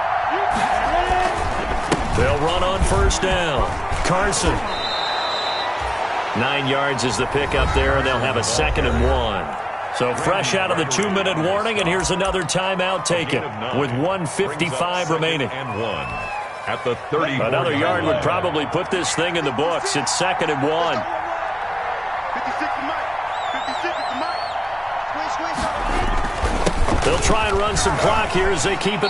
They'll run on first down. Carson. 9 yards is the pickup there, and they'll have a 2nd and 1. So fresh out of the 2-minute warning, and here's another timeout taken with 1:55 remaining. And 1 at the 30. Another yard would probably put this thing in the books. It's 2nd and 1. 56 to Mike. 56 to Mike. They'll try and run some clock here as they keep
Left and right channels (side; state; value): both; identical; correlation 1.00